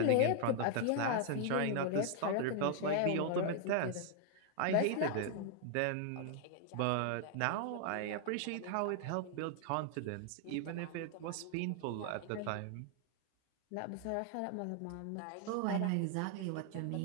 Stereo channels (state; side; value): different; both; correlation 0.00